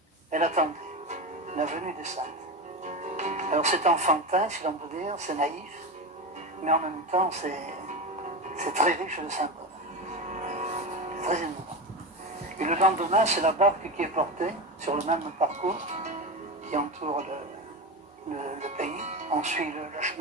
elle attendait la venue des saintes. Alors c'est enfantin, si l'on peut dire, c'est naïf, mais en même temps c'est très riche de symboles. C'est très émouvant. Et le lendemain, c'est la barque qui est portée sur le même parcours qui entoure le pays. On suit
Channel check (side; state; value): both; normal; correlation 0.20